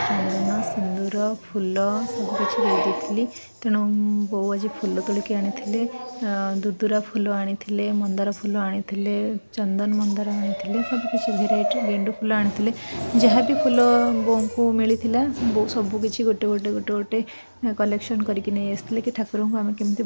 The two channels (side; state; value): both; inverted; correlation -1.00